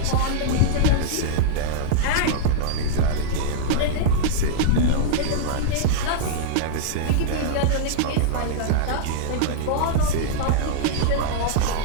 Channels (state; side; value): different; both; correlation -0.02